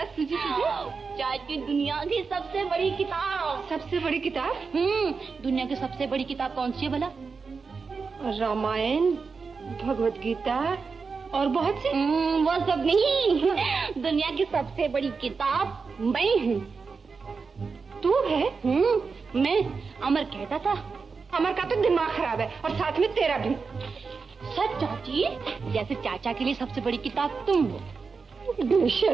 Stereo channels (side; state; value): left; quieter; 4.9 dB